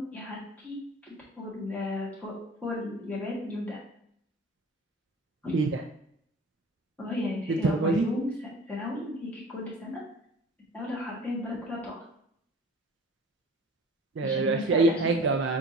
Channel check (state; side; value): normal; both; correlation 0.43